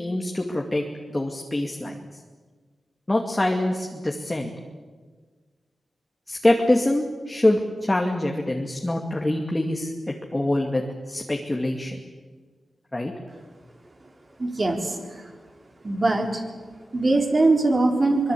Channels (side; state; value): both; normal; correlation 0.95